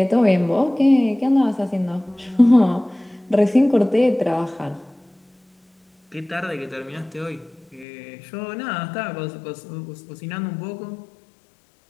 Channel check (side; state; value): right; drops out; at 7.9 s